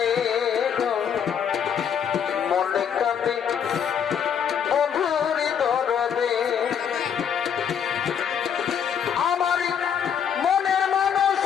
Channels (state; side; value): quieter; right; 8.0 dB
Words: মনে কাঁদে বন্ধুর দরদে, আমার মনের মানুষ